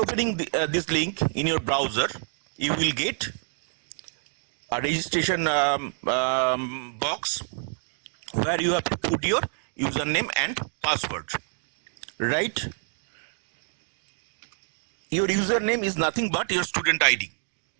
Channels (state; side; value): silent; left; digital silence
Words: this link in your browser, you will get a registration box where you have to put your username and password. Right? Your username is nothing but your student ID.